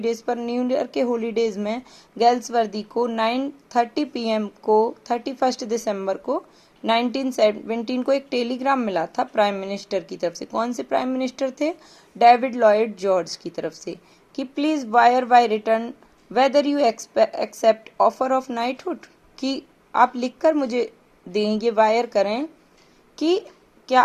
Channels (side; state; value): both; identical; correlation 1.00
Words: पर, न्यू ईयर के हॉलीडेज में गेल्सवर्दी को 9:30 PM को 31 दिसंबर को 1917 को एक टेलीग्राम मिला था प्राइम मिनिस्टर की तरफ से। कौन से प्राइम मिनिस्टर थे, डेविड लॉयड जॉर्ज की तरफ से, कि please wire by return whether you accept offer of knighthood, कि आप लिखकर मुझे दें, ये वायर करें कि क्या